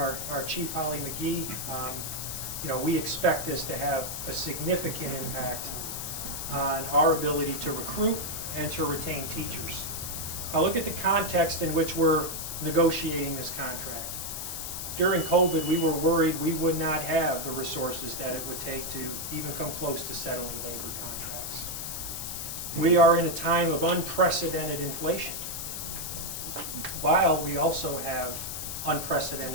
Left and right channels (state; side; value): noise; left; hiss, 5 dB below the sound